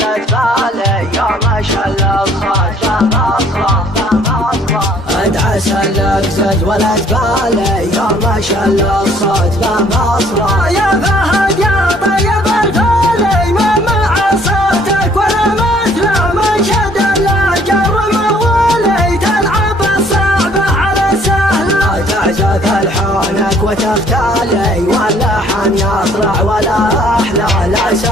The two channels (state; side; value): normal; both; correlation 0.60